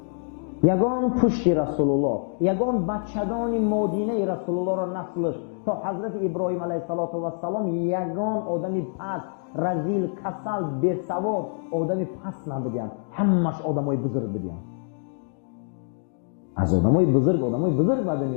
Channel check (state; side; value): silent; right; 61 dB below the other